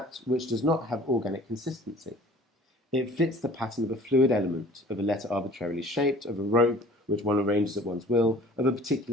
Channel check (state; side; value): normal; both; correlation 0.49